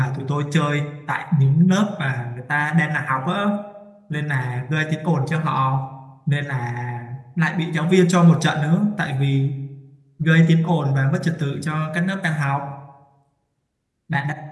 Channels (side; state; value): both; identical; correlation 1.00